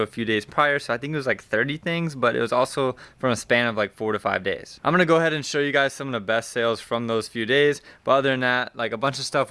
a few days prior. So I think it was like 30 things, but it was also from a span of like 4 to 5 days. I'm gonna go ahead and show you guys some of the best sales from those few days. But other than that, like a bunch of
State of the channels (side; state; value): both; identical; correlation 1.00